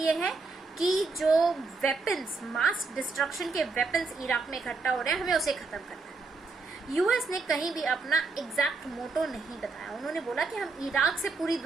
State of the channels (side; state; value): left; quieter; 4.0 dB